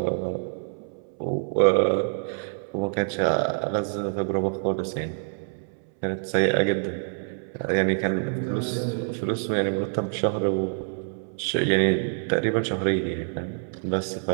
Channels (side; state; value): left; silent; 61 dB below the other